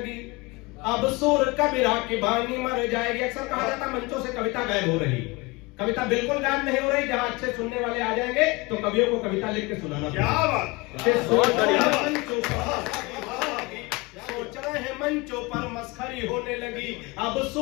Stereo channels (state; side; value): quieter; right; 24.6 dB